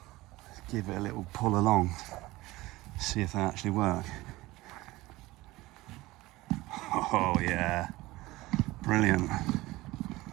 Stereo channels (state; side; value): quieter; left; 19.3 dB